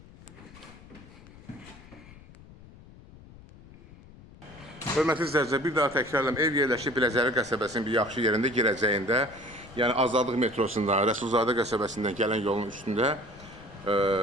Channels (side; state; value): left; noise; rumble, 20 dB below the sound